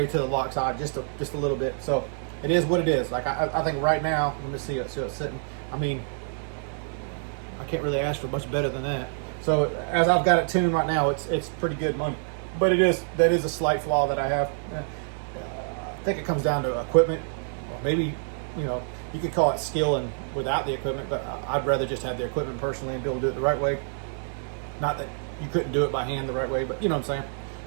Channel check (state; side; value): silent; left; digital silence